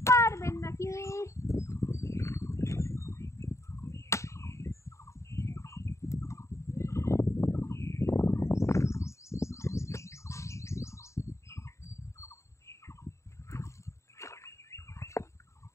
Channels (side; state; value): right; late; 0.14 ms